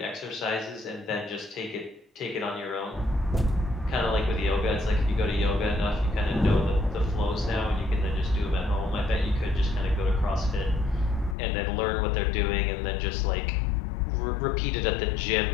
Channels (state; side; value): drops out; right; at 11.4 s